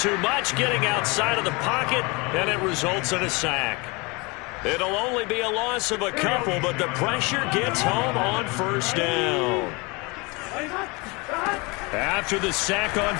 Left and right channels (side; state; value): right; quieter; 27.1 dB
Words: much, getting outside of the pocket, and it results in a sack. It'll only be a loss of a couple, but the pressure gets home on first down. After the sack on